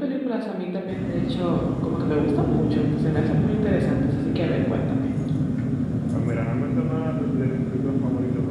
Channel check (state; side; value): identical; both; correlation 1.00